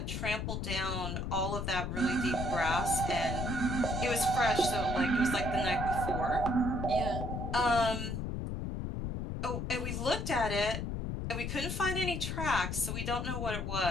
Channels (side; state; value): left; noise; rumble, 3 dB below the sound